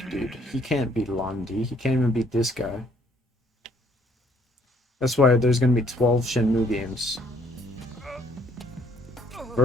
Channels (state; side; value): normal; both; correlation 0.64